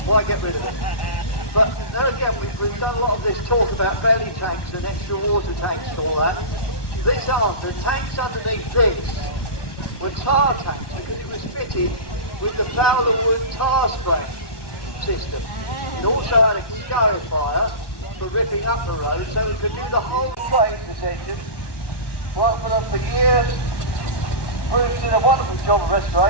why get rid of it? But there again, we've done a lot of this talk about belly tanks and extra water tanks and all that. The tanks underneath this were tar tanks because it was fitted with the Fowler wood tar spray system. It also had a scarifier for ripping up the road, so it could do the whole trade, this engine. Worked for them for years. Bruce did a wonderful job of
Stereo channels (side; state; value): right; late; 1.1 ms